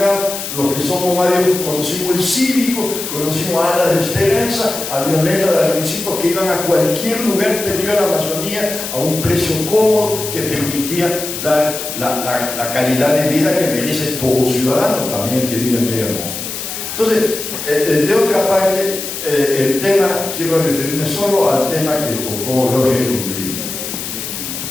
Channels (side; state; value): left; noise; hiss, 6 dB below the sound